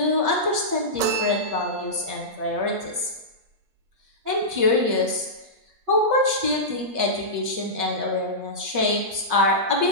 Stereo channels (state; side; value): late; left; 8.5 ms